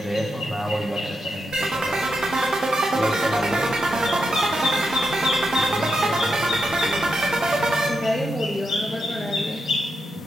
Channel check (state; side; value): normal; both; correlation 0.85